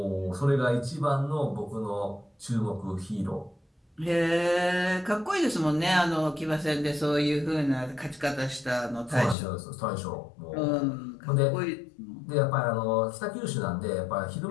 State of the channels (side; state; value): right; drops out; at 9.3 s